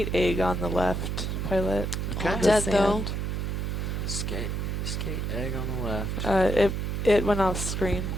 egg on the left, Pilot. Okay. On the Dead, though. sand. Skate egg on the left. It went off screen.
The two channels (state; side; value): noise; right; hum, 2 dB below the sound